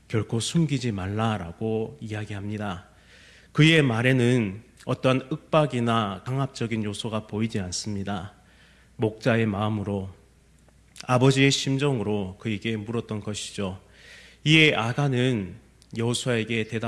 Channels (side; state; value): both; identical; correlation 1.00